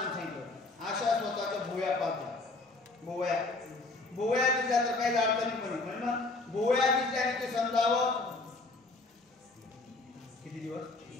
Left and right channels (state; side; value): quieter; right; 3.4 dB